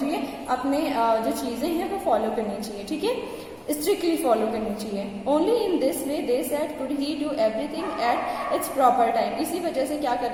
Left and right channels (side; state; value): both; identical; correlation 1.00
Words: अपने जो चीज़ें हैं वो फॉलो करनी चाहिए. ठीक है, स्ट्रिक्टली फॉलो करनी चाहिए. Only in this way they said could he do everything at its proper time. इसी वजह से क्या कर